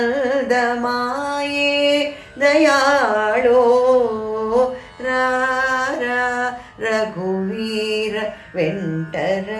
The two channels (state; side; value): identical; both; correlation 1.00